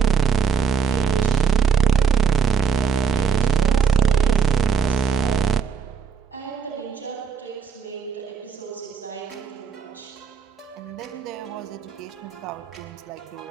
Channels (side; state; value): left; quieter; 6.2 dB